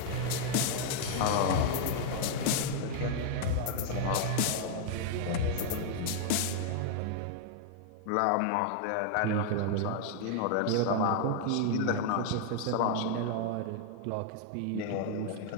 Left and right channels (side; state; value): both; different; correlation 0.00